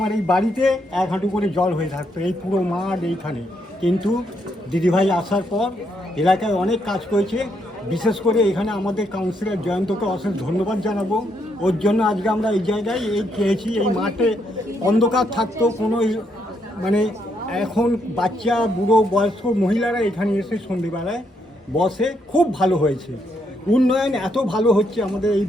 এই বাড়িতে 1 হাঁটু করে জল হয়ে থাকতো, এই পুরো মাঠ এইখানে। কিন্তু দিদিভাই আসার পর এলাকায় অনেক কাজ করেছে। বিশেষ করে এখানে আমাদের কাউন্সিলর জয়ন্তকে অশেষ ধন্যবাদ জানাবো। ওর জন্য আজকে আমরা এই জায়গায় পেয়েছি। এই মাঠে অন্ধকার থাকতো, কোনো এখন বাচ্চা, বুড়ো, বয়স্ক মহিলারা এখানে এসে সন্ধ্যেবেলায় বসে। খুব ভালো হয়েছে, উন্নয়ন এত ভালো হচ্ছে আমাদের এই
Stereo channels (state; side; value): normal; both; correlation 0.76